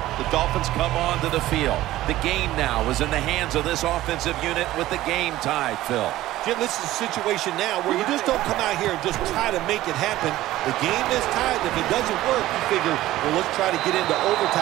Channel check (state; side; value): quieter; left; 15.5 dB